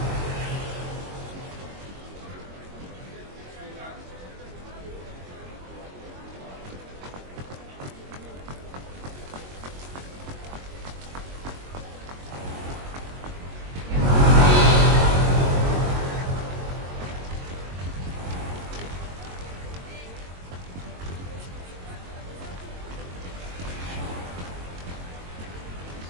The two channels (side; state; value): left; late; 22 ms